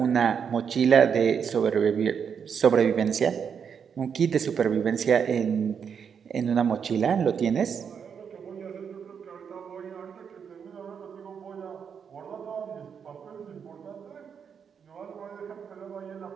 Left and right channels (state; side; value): quieter; left; 7.1 dB